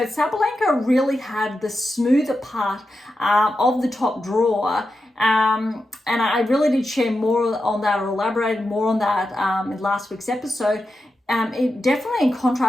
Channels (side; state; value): both; normal; correlation 0.89